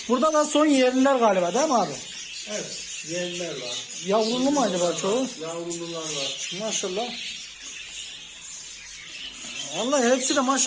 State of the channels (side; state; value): both; identical; correlation 1.00